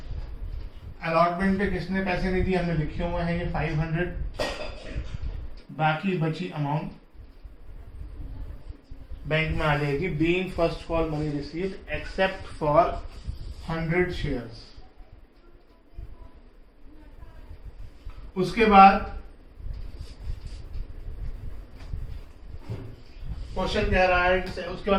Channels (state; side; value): identical; both; correlation 1.00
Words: अलॉटमेंट पे किसने पैसे नहीं दिए हमने लिखे हुए हैं, ये 500. बाकी बची अमाउंट बैंक में आ जाएगी being first call money received except for 100 shares. उसके बाद क्वेश्चन कह रहा है, उसके